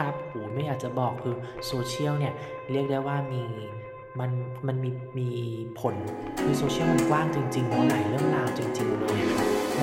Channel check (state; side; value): identical; both; correlation 1.00